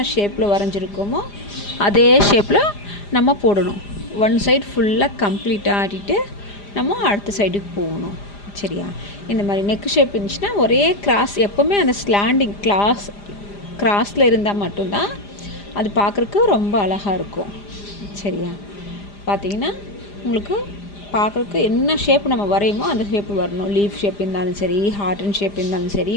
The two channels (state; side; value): late; right; 4.9 ms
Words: ஷேப்பில் வரைஞ்சிருக்கோமோ அதே ஷேப்பில் நம்ம போடணும். ஒன் சைடு ஃபுல்லாக கம்ப்ளீட்டாக ஆடிட்டு நம்ம அடுத்த சைடுக்கு போகணும். சரியா? இந்த மாதிரி நெக் ஷேப் இருந்துச்சுன்னா ஒரே கிராஸ், எப்போவுமே அந்த ஸ்லாண்டிங் கிராஸில் இருந்தால் மட்டும்தான் அது பார்க்குறக்கு ரொம்ப அழகாக இருக்கும். சரியா? பார்த்திங்கன்னா உங்களுக்கு பார்க்குறக்கு என்ன ஷேப் நம்ம வரையுமோ அந்த ஷேப்பு வரணும். லீஃப் ஷேப் இருந்தாலும் சரி, ஹார்டன் ஷேப் இருந்தாலும் சரி,